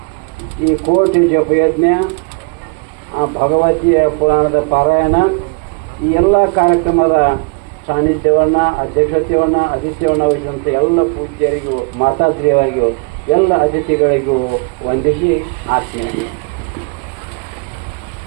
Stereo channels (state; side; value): quieter; left; 33.5 dB